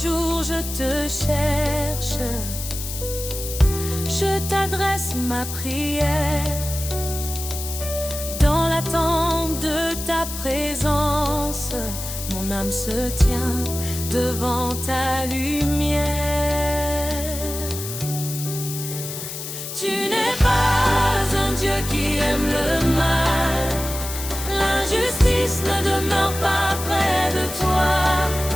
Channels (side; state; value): left; noise; hiss, 8 dB below the sound